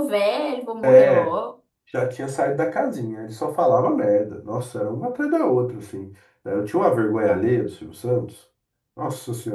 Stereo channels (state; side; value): identical; both; correlation 1.00